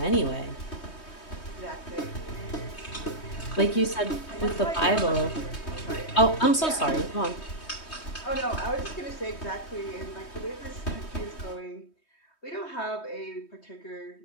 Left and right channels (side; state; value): right; late; 3.2 ms